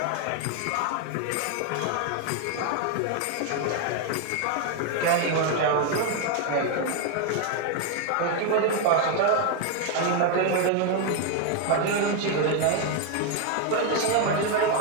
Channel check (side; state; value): both; different; correlation 0.01